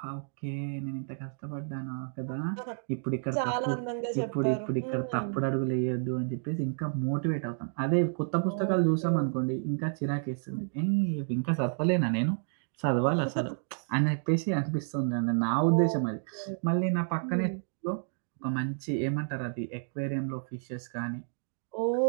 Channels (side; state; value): left; silent; digital silence